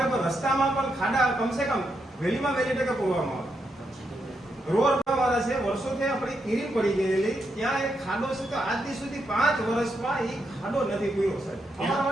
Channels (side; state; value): both; normal; correlation 0.82